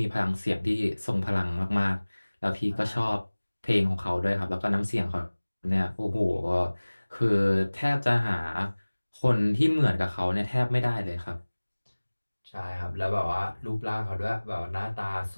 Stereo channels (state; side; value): inverted; both; correlation -1.00